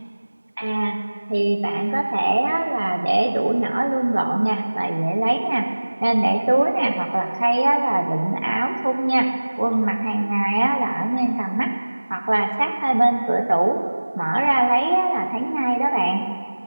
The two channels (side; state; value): both; inverted; correlation -1.00